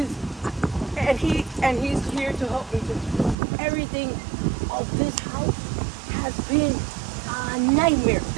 here to help me. Everything of this house has been a nightmare.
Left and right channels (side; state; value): left; drops out; at 3.4 s